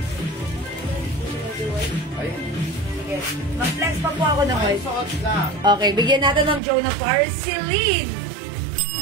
Ayun. Sige. Mag-flex pa po ako ng Ay, white. suot lang. Okay, bigyan natin ng Jonah Parceline.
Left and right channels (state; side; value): drops out; left; at 6.6 s